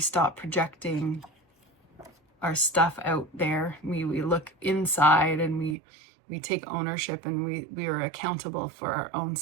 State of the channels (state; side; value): drops out; left; at 5.8 s